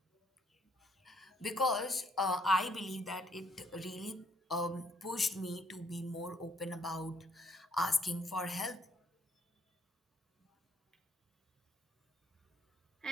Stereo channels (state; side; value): normal; both; correlation 0.68